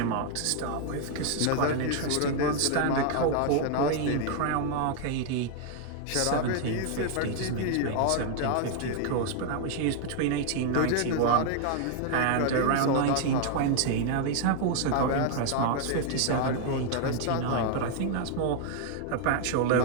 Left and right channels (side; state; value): both; different; correlation 0.00